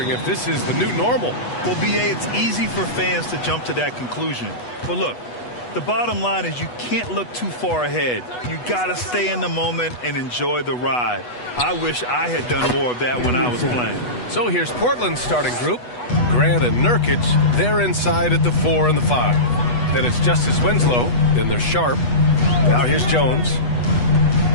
if this is the new normal. Well, BA, it's easy for fans to jump to that conclusion. But look, the bottom line is you can't look too far ahead. You got to stay in the moment and enjoy the ride. I wish I had done more of that when I was playing. So here's Portland's starting group. Grant and Nurkic, they're inside at the 4 and the 5. Then it's Justice Winslow. Then there's Sharp. Now here's Jones.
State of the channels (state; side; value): late; right; 8.2 ms